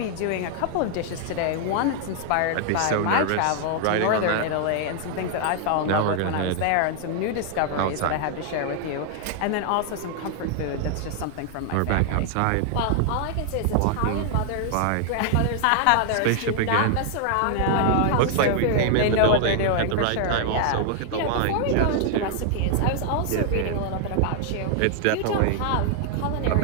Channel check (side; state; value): both; different; correlation 0.00